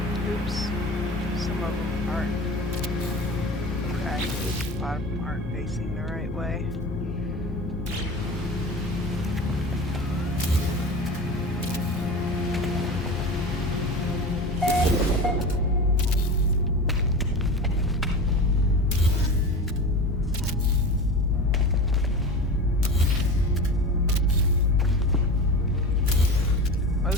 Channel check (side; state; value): both; normal; correlation 0.31